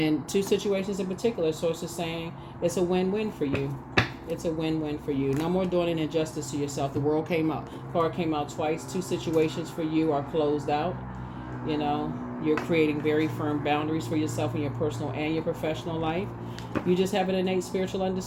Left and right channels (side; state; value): both; identical; correlation 1.00